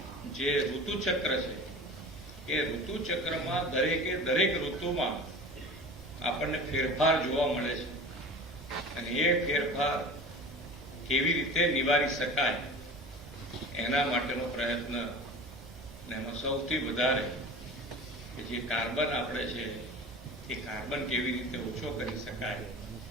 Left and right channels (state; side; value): normal; both; correlation 0.37